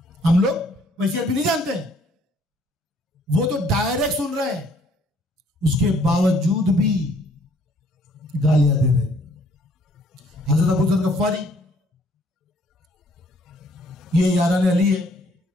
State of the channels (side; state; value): both; normal; correlation 0.62